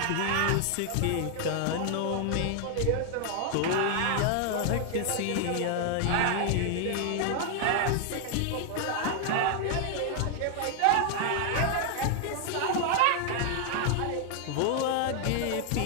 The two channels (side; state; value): both; different; correlation 0.00